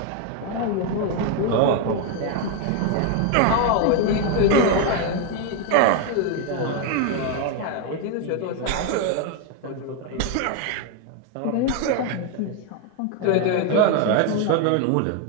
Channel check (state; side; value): different; both; correlation 0.01